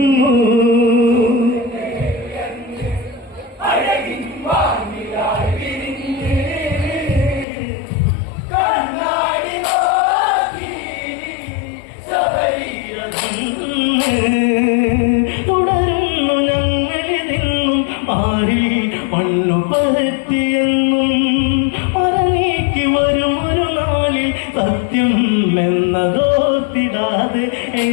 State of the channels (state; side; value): drops out; right; at 7.5 s